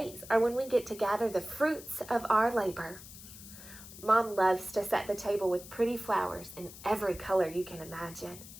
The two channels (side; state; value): left; noise; hiss, 16 dB below the sound